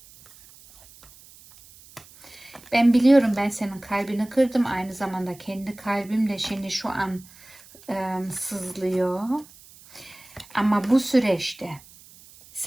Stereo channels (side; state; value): right; noise; hiss, 23 dB below the sound